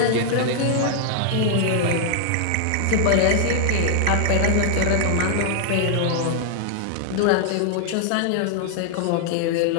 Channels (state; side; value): different; both; correlation 0.00